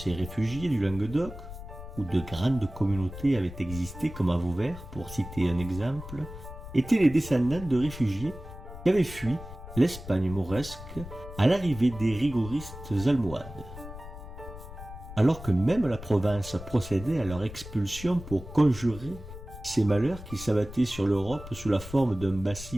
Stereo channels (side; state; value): left; noise; rumble, 13 dB below the sound